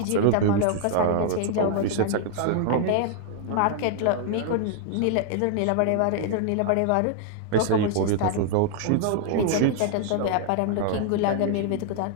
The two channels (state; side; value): different; both; correlation 0.00